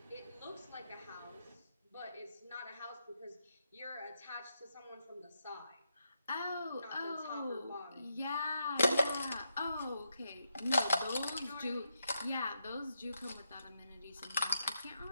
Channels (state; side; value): inverted; both; correlation -0.83